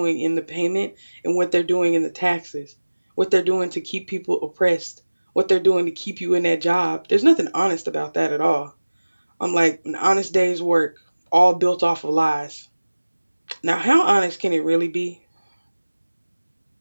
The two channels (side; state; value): both; inverted; correlation -1.00